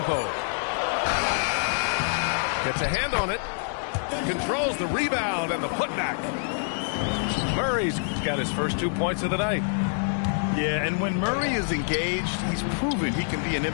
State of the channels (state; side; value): silent; right; 61 dB below the other